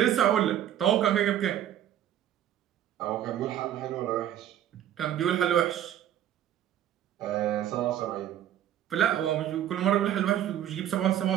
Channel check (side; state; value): left; quieter; 11.2 dB